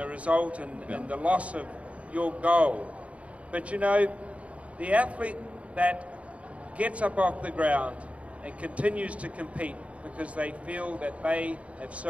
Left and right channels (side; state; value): left; late; 0.065 ms